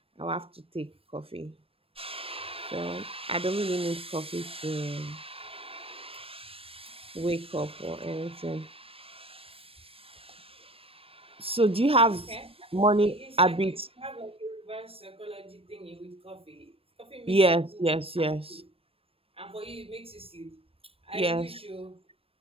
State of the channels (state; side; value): late; left; 0.28 ms